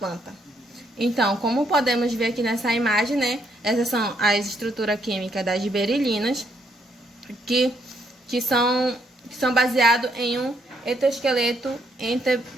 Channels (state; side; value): normal; both; correlation 0.73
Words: Então, como podemos ver aqui nessa imagem, né, essas são as estruturas químicas das giberelinas, que são baseados em um etoesqueleto